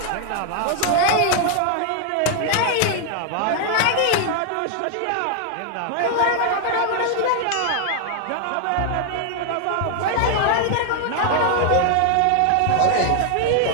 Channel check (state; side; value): different; both; correlation 0.00